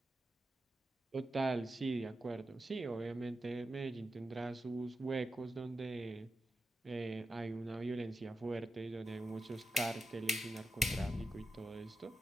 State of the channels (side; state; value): both; normal; correlation 0.89